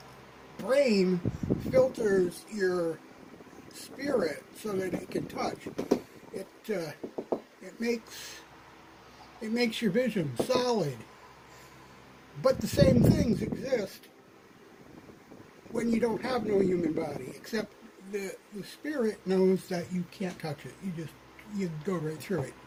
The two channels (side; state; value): both; identical; correlation 1.00